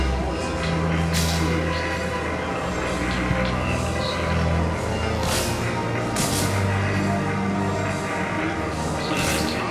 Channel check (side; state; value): both; identical; correlation 1.00